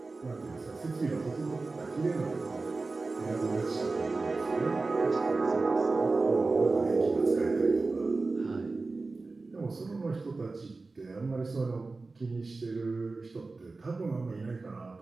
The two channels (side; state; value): left; quieter; 3.7 dB